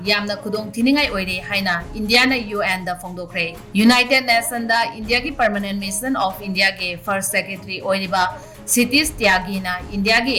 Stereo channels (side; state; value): both; identical; correlation 1.00